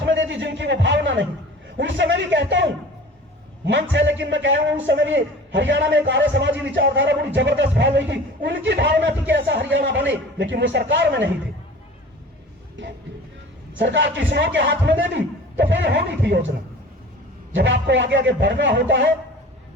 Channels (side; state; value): both; normal; correlation 0.42